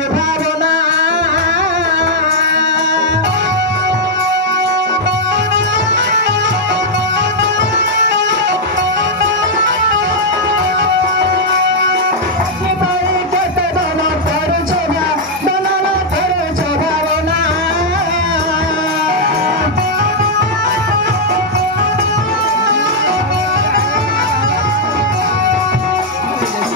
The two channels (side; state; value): both; normal; correlation -0.03